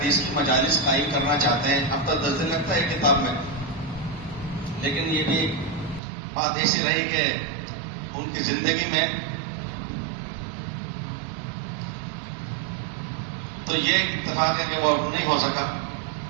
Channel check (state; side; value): drops out; left; at 6.0 s